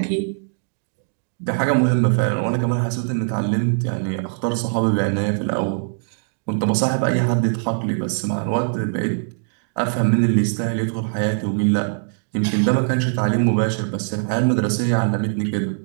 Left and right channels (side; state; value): left; silent; digital silence